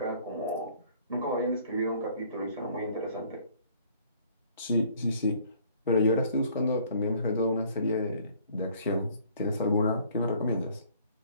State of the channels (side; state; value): both; inverted; correlation -0.57